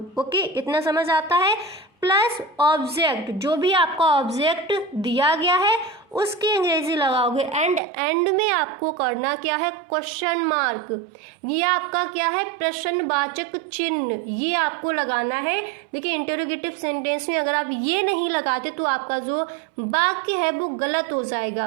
ओके, इतना समझ आता है। प्लस ऑब्जेक्ट, जो भी आपका ऑब्जेक्ट दिया गया है उसकी अंग्रेजी लगाओगे। एंड में आपको करना क्या है, क्वेश्चन मार्क, ये आपका क्या है, प्रश्नवाचक चिन्ह, ये आपको लगाना है। देखिए इंटरोगेटिव सेंटेंस में अगर आप ये नहीं लगाते तो आपका जो वाक्य है वो गलत हो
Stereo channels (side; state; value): left; drops out; at 7.8 s